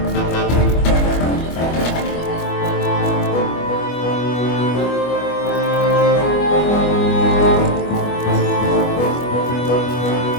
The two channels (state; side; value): late; right; 25 ms